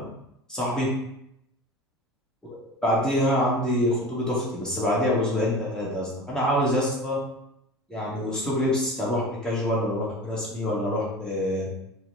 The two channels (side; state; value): both; normal; correlation 0.35